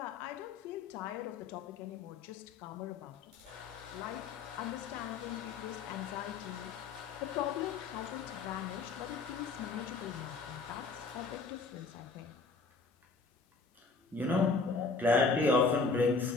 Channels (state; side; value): quieter; right; 4.3 dB